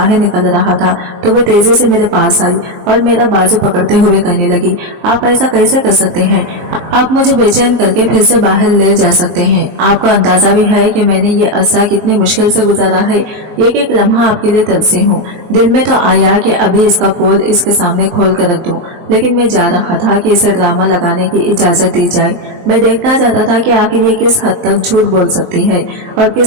निकल रहा था तो वो तेजी से मेरे पास आई और मेरा बाजू पकड़ते हुए कहने लगी, आप ऐसा कैसे कर सकते हैं? आप मुझे बेचैन करके फिर से बाहर ले जा सकते हैं। आपको अंदाजा भी है कि मैंने ये अरसा कितनी मुश्किल से गुजारा है। एक एक लम्हा आपके लिए तरसी हूँ। दिल में तो आया कि अभी इसका पोल इसके सामने खोल कर रख दूं, लेकिन मैं जा रहा था कि इसे ड्रामा लगाने की इजाजत दी जाए। मैं देखना चाहता था कि आखिर ये किस हद तक झूठ बोल सकती है और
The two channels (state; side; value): late; left; 23 ms